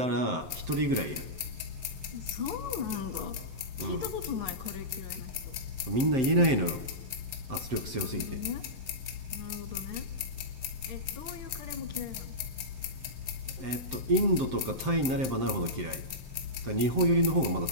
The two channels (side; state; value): left; late; 7.7 ms